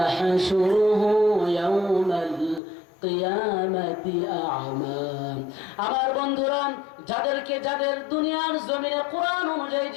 يوم القيامة أعمى। আমার বন্ধুরা, যাদের দুনিয়ার জমিনে কোরআন অনুযায়ী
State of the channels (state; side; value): drops out; right; at 2.6 s